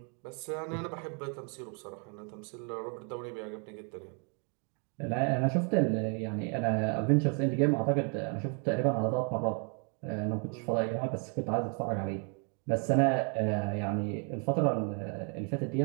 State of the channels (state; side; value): quieter; left; 38.1 dB